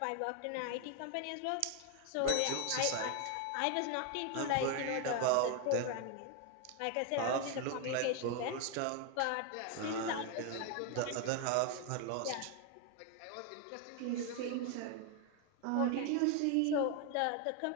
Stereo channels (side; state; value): both; different; correlation 0.01